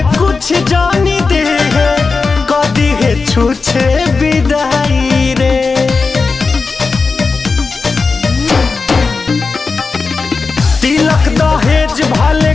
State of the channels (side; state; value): right; quieter; 4.4 dB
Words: कुछ जानी दे है कदी है छूछे विदाई रे तिलक दहेज भले